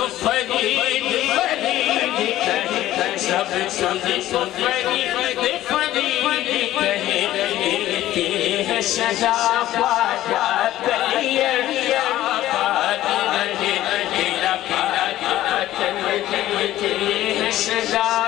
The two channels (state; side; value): quieter; right; 14.3 dB